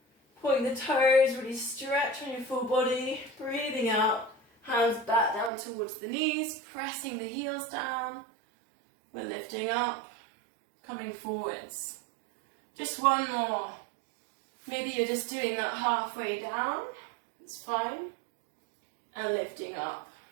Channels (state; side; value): drops out; left; at 5.5 s